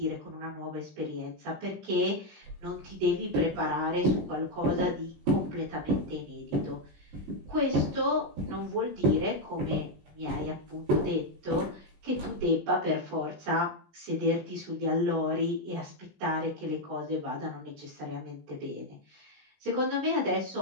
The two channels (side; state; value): left; late; 20 ms